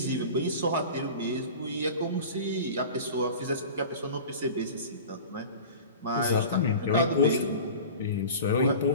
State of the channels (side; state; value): both; inverted; correlation -0.37